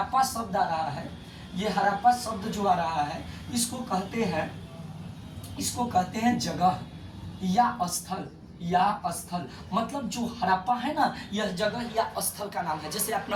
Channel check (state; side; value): identical; both; correlation 1.00